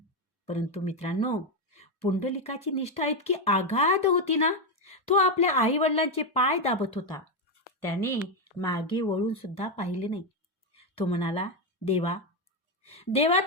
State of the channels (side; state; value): both; normal; correlation 0.06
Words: परंतु मित्रांनो, पुंडलिकाची निष्ठा इतकी आगाध होती ना, तो आपल्या आई वडिलांचे पाय दाबत होता. त्याने मागे वळून सुद्धा पाहिले नाही. तो म्हणाला, देवा